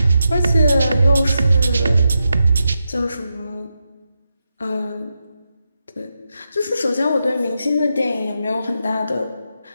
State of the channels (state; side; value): inverted; both; correlation -0.87